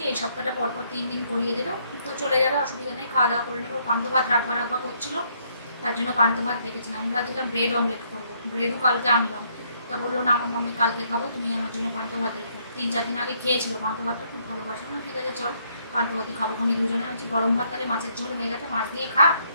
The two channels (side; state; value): both; inverted; correlation -0.70